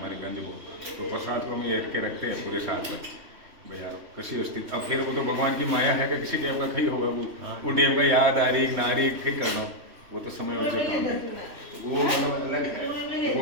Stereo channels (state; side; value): late; left; 3.1 ms